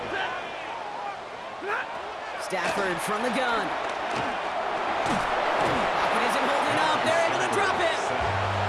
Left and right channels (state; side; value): identical; both; correlation 1.00